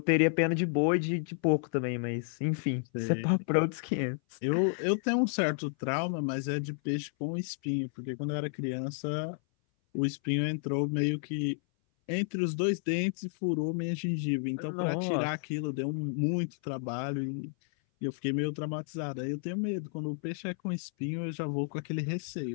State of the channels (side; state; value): right; silent; 57 dB below the other